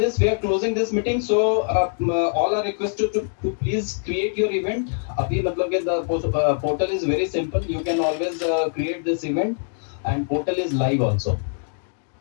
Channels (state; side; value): silent; right; digital silence